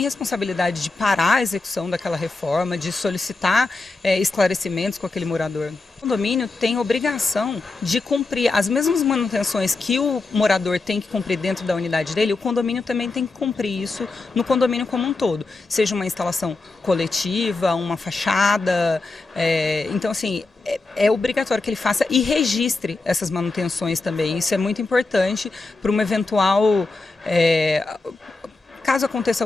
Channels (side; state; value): right; quieter; 3.5 dB